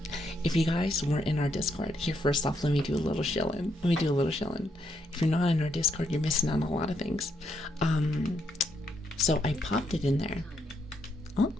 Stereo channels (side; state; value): both; normal; correlation 0.77